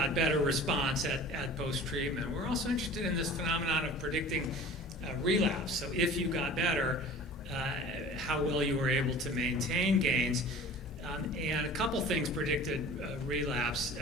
better response at post-treatment. We're also interested in this phenomenon of predicting relapse. So if you got better, how well you were able to maintain gains. And a couple things predicted relapse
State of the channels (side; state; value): both; normal; correlation 0.42